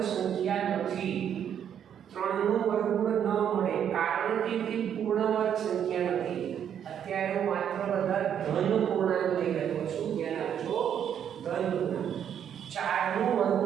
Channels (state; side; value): quieter; left; 9.0 dB